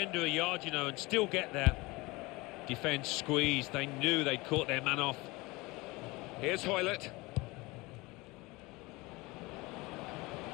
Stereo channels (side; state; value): right; quieter; 23.0 dB